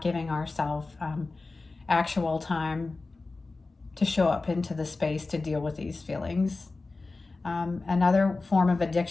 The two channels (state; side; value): quieter; right; 3.6 dB